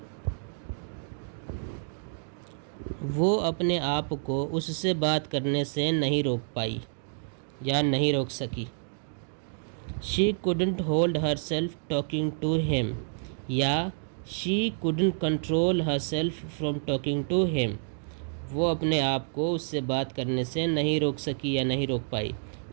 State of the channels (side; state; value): left; silent; digital silence